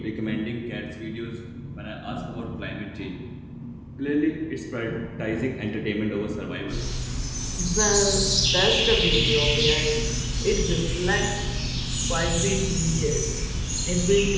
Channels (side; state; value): both; identical; correlation 1.00